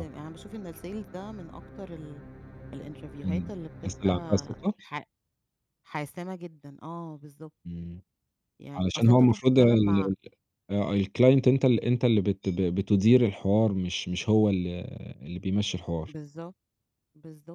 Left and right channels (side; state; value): both; identical; correlation 1.00